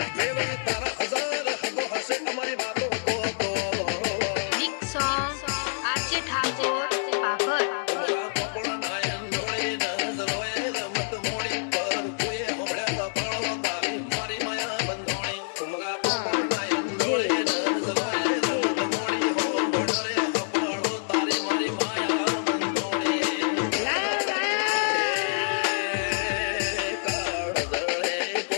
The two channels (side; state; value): right; silent; digital silence